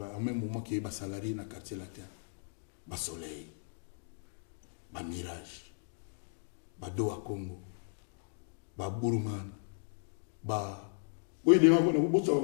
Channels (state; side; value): silent; right; digital silence